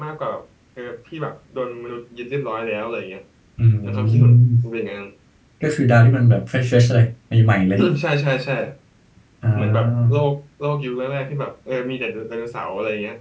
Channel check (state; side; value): identical; both; correlation 1.00